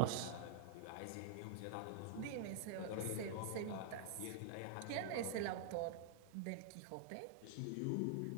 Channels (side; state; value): both; different; correlation -0.01